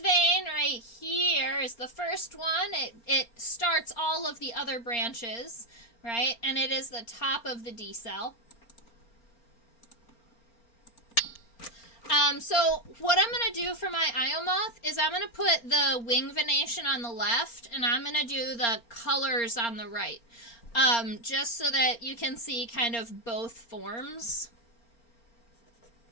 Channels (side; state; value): right; late; 4.3 ms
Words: vein right here is the first one. It starts all of the other branches, right? And it is the top of the D cell. So what I'm going to do for my Io moth is I'm going to put the wing venation on the left, and I'm going to do the colors on the right, just so that you can see kind of both forms.